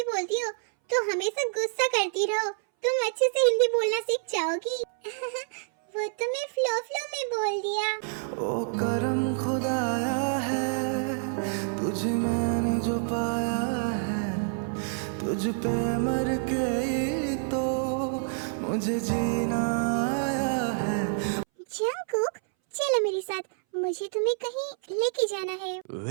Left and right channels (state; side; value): silent; left; 60 dB below the other